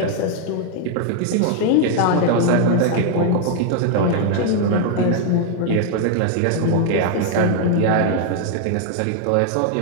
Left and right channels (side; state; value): both; different; correlation 0.00